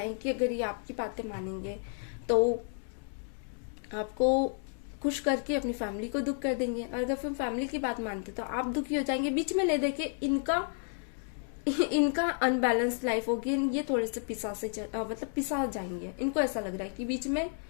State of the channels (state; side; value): silent; right; 57 dB below the other